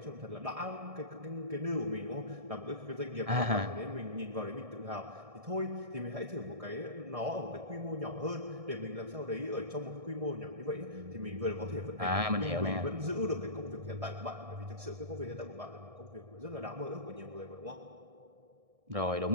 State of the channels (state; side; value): late; left; 1.6 ms